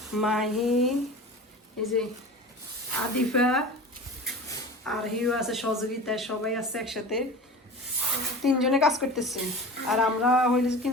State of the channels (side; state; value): both; normal; correlation 0.35